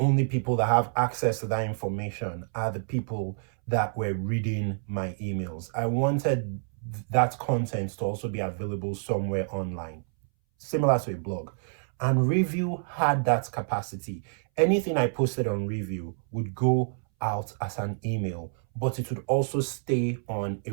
people that have access to that information are the people that were reading my emails. I wanted that content to also be available somewhere online, similar to a blog. And Review had that capacity. Anything I posted on Review would go out as an email, but it would also stay on a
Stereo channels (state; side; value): silent; left; 59 dB below the other